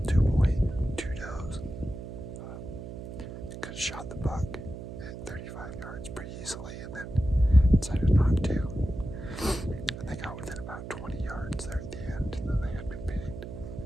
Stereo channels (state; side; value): noise; right; hum, 9 dB below the sound